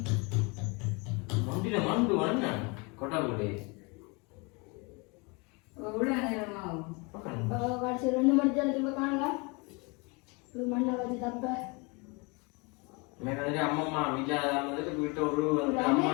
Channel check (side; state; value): right; quieter; 29.4 dB